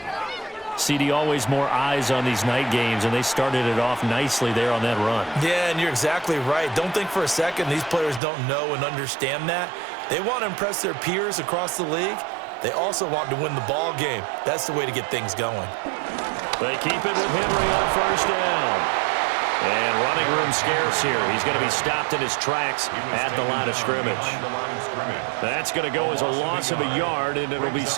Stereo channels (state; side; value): drops out; left; at 8.2 s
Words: CD, always more eyes on these night games, and they started it off nicely there on that run. Yeah, and you're exactly right. Don't think for a second these players don't know and understand that. They want to impress their peers across the league. They also want to win the ball game. That's the way to get things going. They keep it with Henry on first down. And running room scarce here. He's going to be stopped in his tracks at the line of scrimmage. That's going to go as a loss of a yard, and it'll be